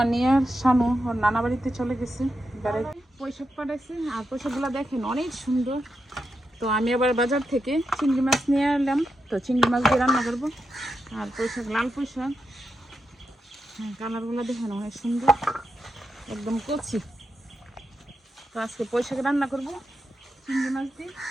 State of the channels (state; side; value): normal; both; correlation 0.86